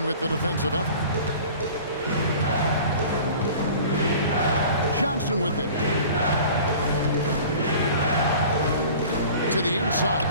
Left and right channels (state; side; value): inverted; both; correlation -0.43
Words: with the defensive effort. Johnson with it. To the inside.